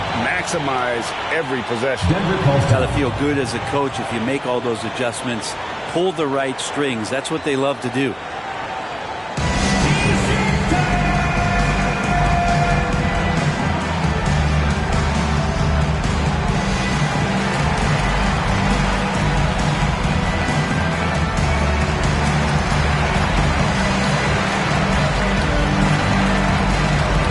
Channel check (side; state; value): both; identical; correlation 1.00